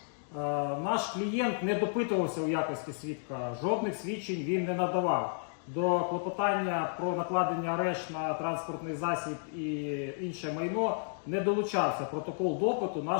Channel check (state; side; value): silent; right; digital silence